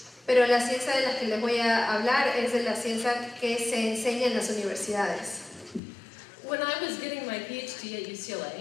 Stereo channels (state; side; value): drops out; right; at 5.8 s